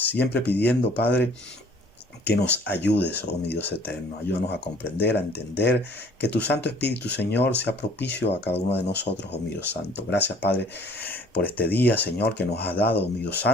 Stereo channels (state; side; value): normal; both; correlation 0.55